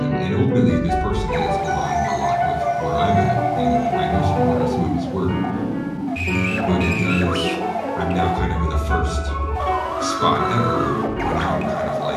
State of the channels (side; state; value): both; identical; correlation 1.00